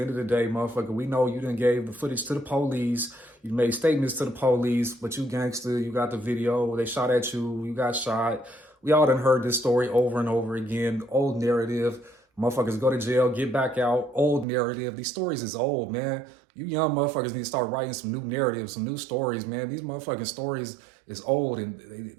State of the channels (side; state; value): left; drops out; at 14.5 s